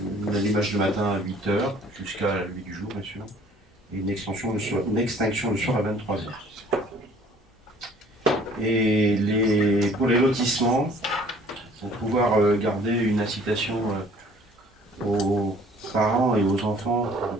l'allumage le matin à 8h, jusqu'à la levée du jour, bien sûr, et une extinction le soir à 23h. Et pour les lotissements, pour pouvoir garder une incitation aux parents et aux enfants de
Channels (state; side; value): normal; both; correlation 0.55